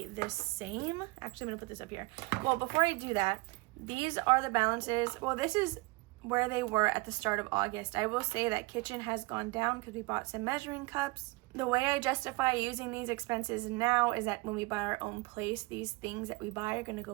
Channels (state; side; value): quieter; left; 24.5 dB